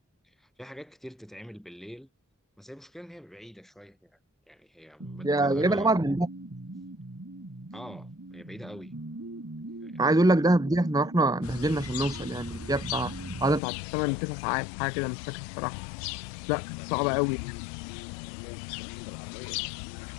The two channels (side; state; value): right; drops out; at 13.6 s